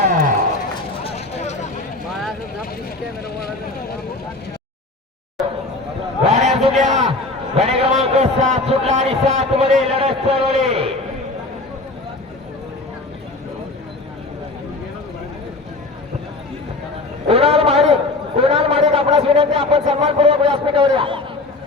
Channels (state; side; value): quieter; right; 3.0 dB